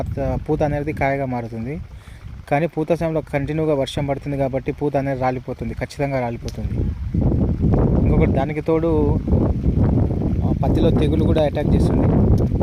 పూత అనేది కాయగా మారుతుంది. కానీ పూత సమయంలో కంటిన్యూగా వర్షం పడుతుంది కాబట్టి పూత అనేది రాలిపోతుంది, ఖచ్చితంగా రాలిపోతుంది. ఇంకొకటి, దానికి తోడు పత్తిలో తెగులు కూడా అటాక్ చేస్తుంది.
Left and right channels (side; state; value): both; identical; correlation 1.00